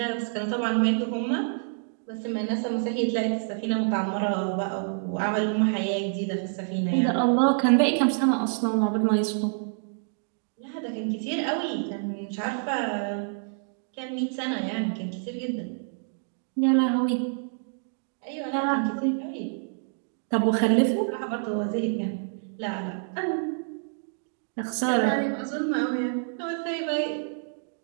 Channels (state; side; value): silent; left; digital silence